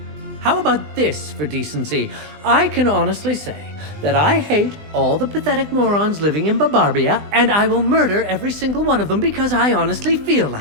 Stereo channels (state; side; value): late; left; 20 ms